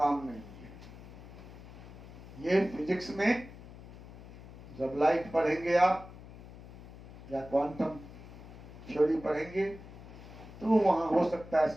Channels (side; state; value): left; noise; hum, 16 dB below the sound